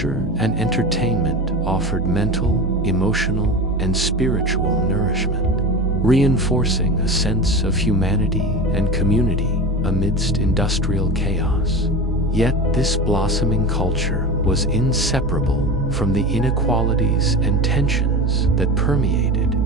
and entertainment offered mental, emotional, and spiritual nourishment, reinforcing a sense of humanity and community amidst industrial chaos. Yet this blossoming culture was inseparable from the inequalities and tensions that permeated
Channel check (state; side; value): normal; both; correlation 0.28